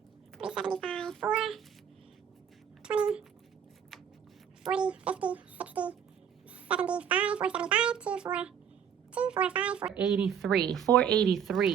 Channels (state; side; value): quieter; left; 8.2 dB